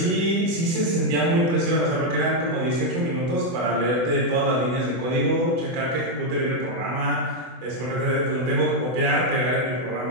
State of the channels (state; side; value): late; left; 24 ms